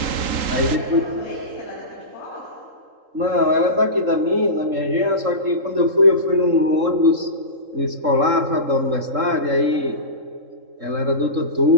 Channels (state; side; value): late; left; 3.8 ms